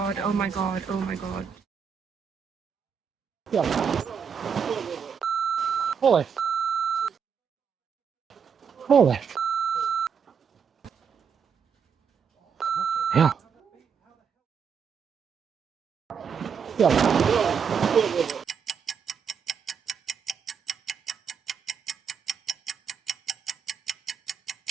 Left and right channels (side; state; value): left; quieter; 6.7 dB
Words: oh my god, oh my god. Yeah. Holy. Yeah. Yeah.